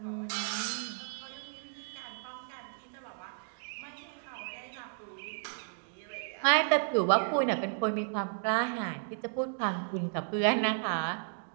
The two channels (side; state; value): left; silent; digital silence